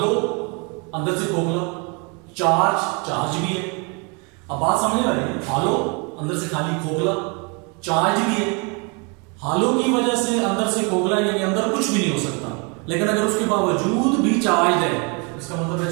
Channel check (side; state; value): left; quieter; 33.1 dB